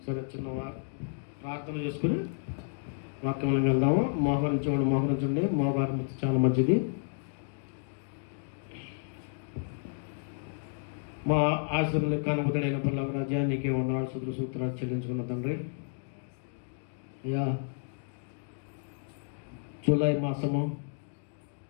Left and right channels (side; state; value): right; silent; digital silence